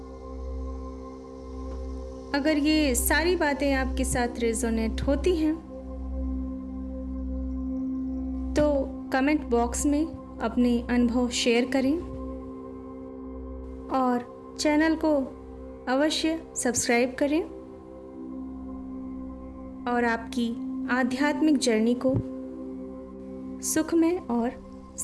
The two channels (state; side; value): identical; both; correlation 1.00